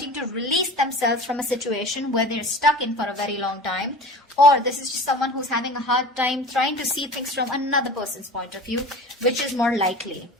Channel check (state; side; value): normal; both; correlation 0.37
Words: to release themselves from a situation where they're stuck in for a very long time, or this is just someone who's having a hard time trying to see things from another person's point of view, which is more likely.